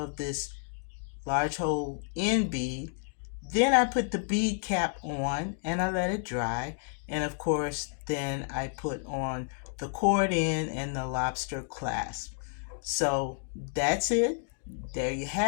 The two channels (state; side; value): silent; right; 57 dB below the other